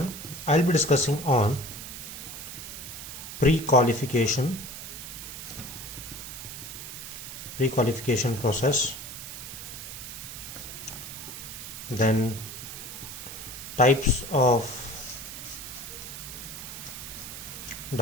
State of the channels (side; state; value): right; noise; hiss, 9 dB below the sound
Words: I'll be discussing on pre-qualification process, then types of